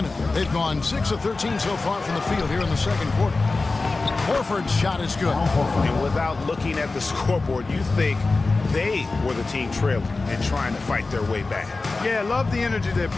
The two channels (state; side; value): quieter; right; 3.6 dB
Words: they've gone 6 of 13 so far from the field here in the second quarter. Horford's shot is good. And without looking at the scoreboard, you think they were the team trailing and trying to fight their way back. Yeah, love the energy they're